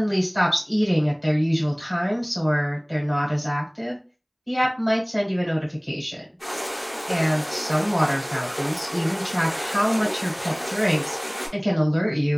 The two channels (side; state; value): both; identical; correlation 1.00